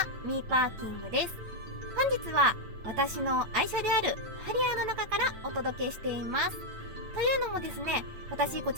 ミーパーキングです。本日は私の愛車であるハリアーの中からお届けしています。というのもですね、私こ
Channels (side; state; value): left; late; 9.0 ms